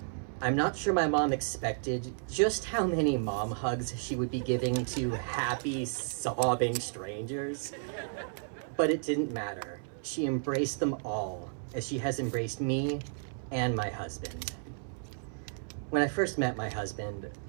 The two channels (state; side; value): silent; left; 56 dB below the other